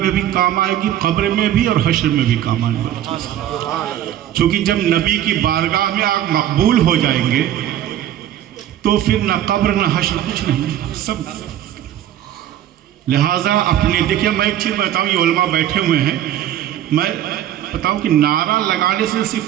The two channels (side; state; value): left; quieter; 11.7 dB